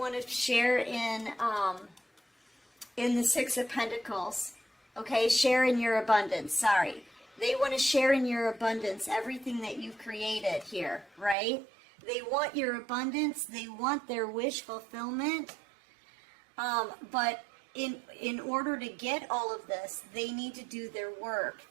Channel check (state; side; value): drops out; left; at 11.4 s